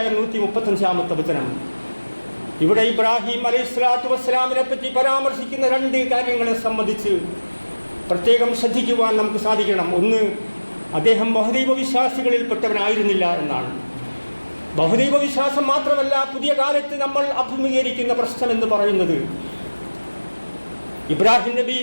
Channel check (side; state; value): both; inverted; correlation -1.00